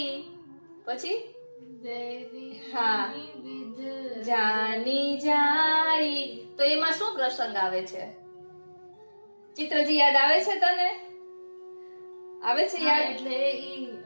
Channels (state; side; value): inverted; both; correlation -1.00